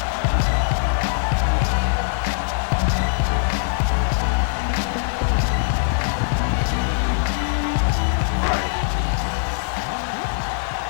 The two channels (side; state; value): right; silent; digital silence